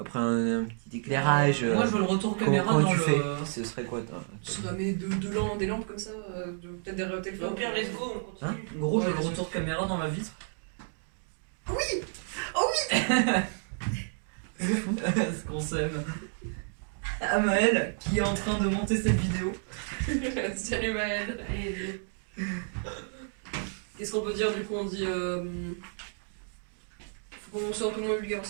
un petit éclairage. Moi je veux le retour caméra comment dans tu le. fais Ce serait quoi toi? Je vais mettre des lampes comme ça, peut-être derrière le Au téléphone. pire, let's go, on continue. Hein En gros, Ouais, j'ai le bien retour caméra dans ma vitre. Oui. Oh oui. Ce qu'on s'aime. Amael, qui est en train de monter cette vidéo. Salut Maël. Allez, Qu'est-ce qu'on peut dire du coup? On dit. Faut qu'on soit un peu moins vulgaire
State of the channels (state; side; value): silent; left; 56 dB below the other